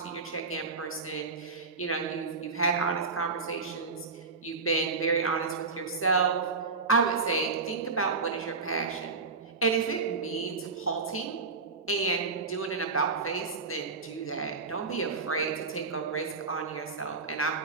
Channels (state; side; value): quieter; left; 4.4 dB